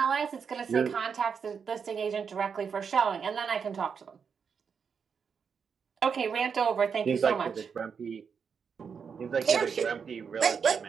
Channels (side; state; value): left; quieter; 6.4 dB